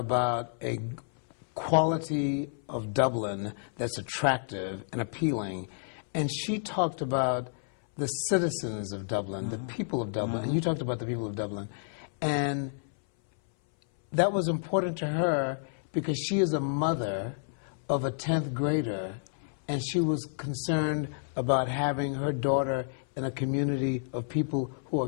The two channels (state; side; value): silent; right; 58 dB below the other